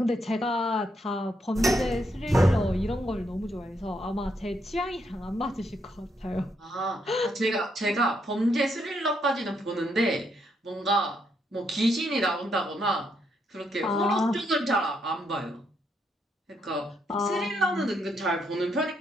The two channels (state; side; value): normal; both; correlation 0.77